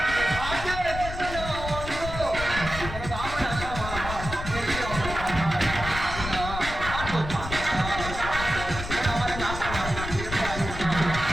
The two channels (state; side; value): noise; left; rumble, 7 dB below the sound